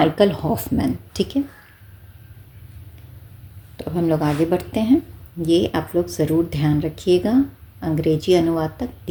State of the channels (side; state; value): both; identical; correlation 1.00